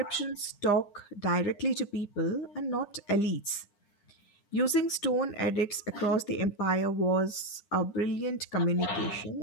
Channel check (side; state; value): right; late; 9.9 ms